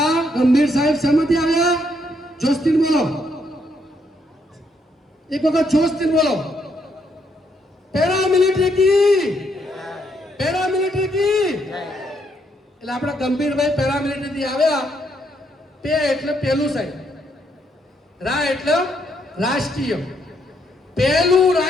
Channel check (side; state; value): both; normal; correlation 0.74